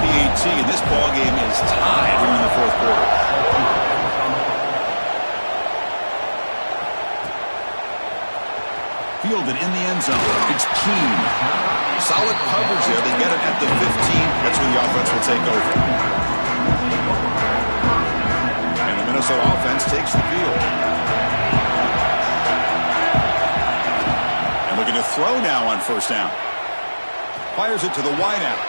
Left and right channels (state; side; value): inverted; both; correlation -1.00